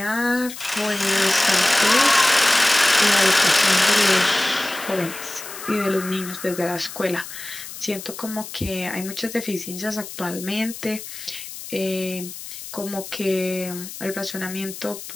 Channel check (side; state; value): left; noise; hiss, 12 dB below the sound